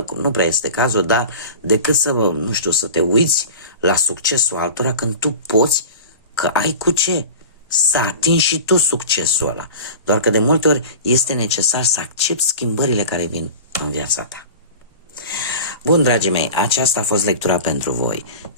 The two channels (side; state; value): both; inverted; correlation -0.35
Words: nu prea este cazul, dar decât să, nu știu, să te uiți la succesul altora când tu poți, că ai cu ce să atingi și tu succesul ăla. Doar că de multe ori este necesar să accepti schimbările care vin în viața ta. Bun, dragii mei, aceasta a fost lectura pentru voi.